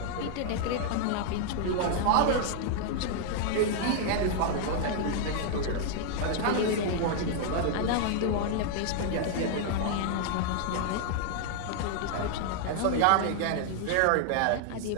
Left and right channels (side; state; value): both; different; correlation 0.00